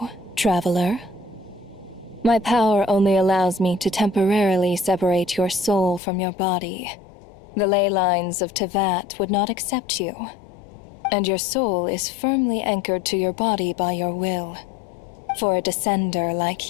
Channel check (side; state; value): right; drops out; at 6.0 s